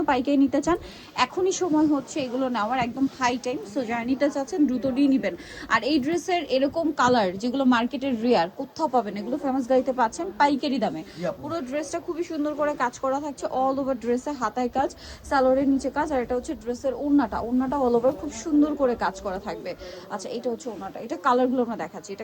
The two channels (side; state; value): both; identical; correlation 1.00